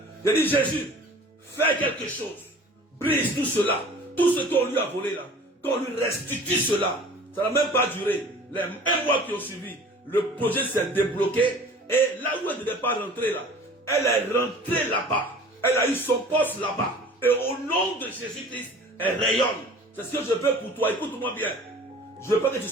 J'ai dit, Jésus, fais quelque chose. Brise tout cela. Tout ce qu'on lui a volé là. Qu'on lui restitue cela. Ça n'a même pas duré. Les 1 mois qui ont suivi, le projet s'est débloqué. Et là où elle ne devait pas rentrer là, elle est rentrée là-bas. Elle a eu son poste là-bas. Et au nom de Jésus-Christ, elle rayonne. C'est ce que je veux pour toi. Écoute-moi bien. Je veux pas que tu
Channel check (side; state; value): both; normal; correlation 0.45